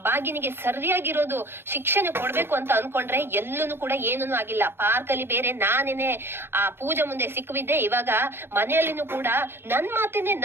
ಭಾಗ್ಯನಿಗೆ ಸರಿಯಾಗಿರೋದು ಶಿಕ್ಷಣೆ ಕೊಡ್ಬೇಕು ಅಂತ ಅನ್ಕೊಂಡ್ರೆ ಎಲ್ಲೂ ಕೂಡ ಏನೂ ಆಗಿಲ್ಲ. ಪಾರ್ಕ್ ಅಲ್ಲಿ ಬೇರೆ ನಾನೇನೆ ಆ ಪೂಜೆ ಮುಂದೆ ಸಿಕ್ಕಿದ್ದೆ, ಇವಾಗ ಮನೆಯಲ್ಲಿನೂ ಕೂಡ ನನ್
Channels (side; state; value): left; late; 0.11 ms